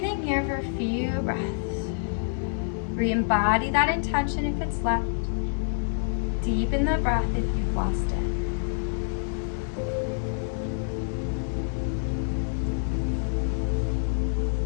here for a few breaths. Re-embody that intention if it's left. Deepen the breath if you've lost it.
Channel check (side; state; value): right; silent; digital silence